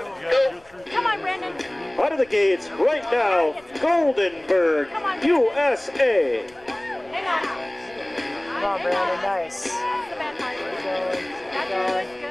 go. Come on, Brandon. Out of the gates right now, Goldenberg, USA. Hang on. Come on, Brandon, nice. That's the bad part. Keep going, keep going.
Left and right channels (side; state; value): left; noise; rumble, 28 dB below the sound